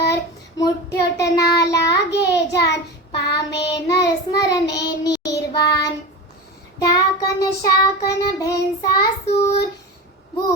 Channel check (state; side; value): normal; both; correlation 0.26